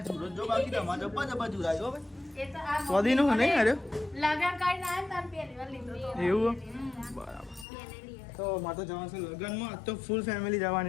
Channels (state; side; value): drops out; right; at 7.7 s